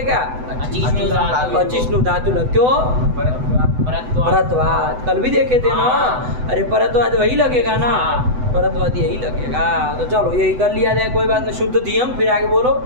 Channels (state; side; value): late; left; 8.0 ms